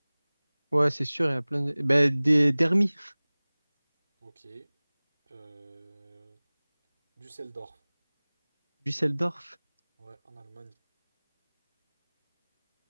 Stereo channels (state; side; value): inverted; both; correlation -1.00